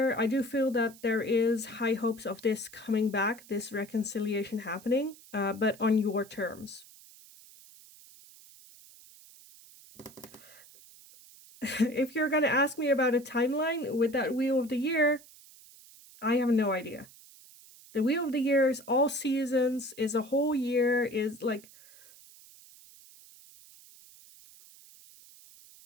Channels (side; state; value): right; noise; hiss, 22 dB below the sound